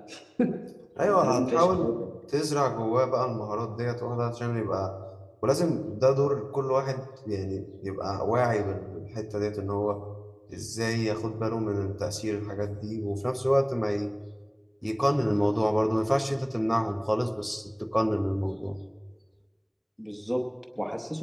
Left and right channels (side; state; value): both; identical; correlation 1.00